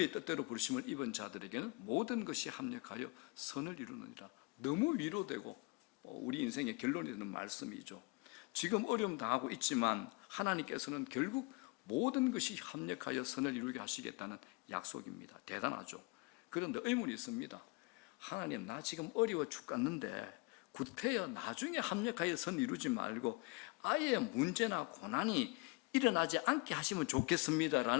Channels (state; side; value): quieter; right; 26.7 dB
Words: 뜻대로 부르심을 입은 자들에게는 모든 것이 합력하여 선을 이루느니라. 너무 위로되고 우리 인생의 결론이 되는 말씀이죠. 지금 어려움 당하고 있지만 하나님께서는 결국 모든 것이 합력하여 선을 이루게 하시겠다는 약속입니다. 대단하죠. 그런데 의문이 있습니다. 하나님, 나 지금 어려워 죽겠는데 구태여 나중에 합력하여 선 이루지 말고 아예 문제나 고난이 일어나지 않게 하시면